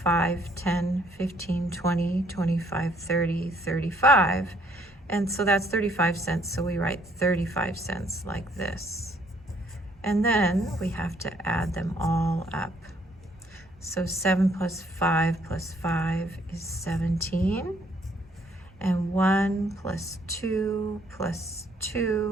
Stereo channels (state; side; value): normal; both; correlation 0.66